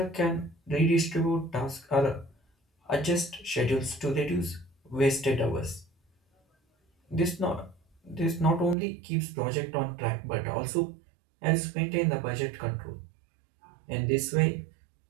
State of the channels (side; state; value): left; drops out; at 8.8 s